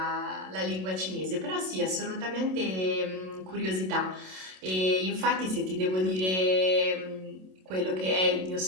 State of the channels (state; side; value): late; left; 27 ms